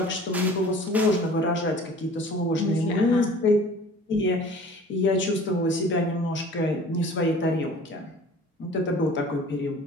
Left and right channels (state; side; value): normal; both; correlation 0.46